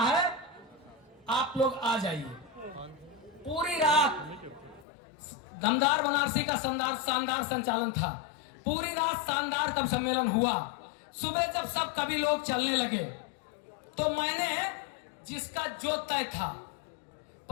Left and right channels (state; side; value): drops out; right; at 4.9 s